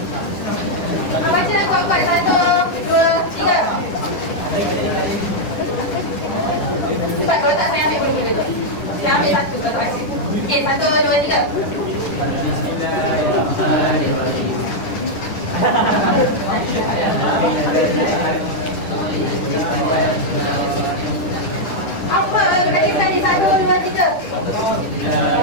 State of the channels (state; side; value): late; right; 10 ms